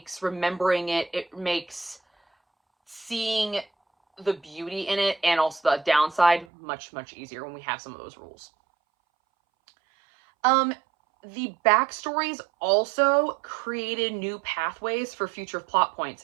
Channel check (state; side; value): drops out; left; at 6.5 s